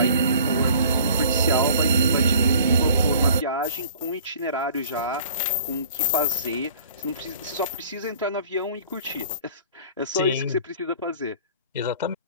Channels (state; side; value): inverted; both; correlation -0.49